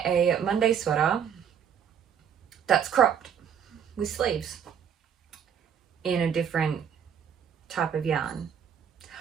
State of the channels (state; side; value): quieter; left; 8.2 dB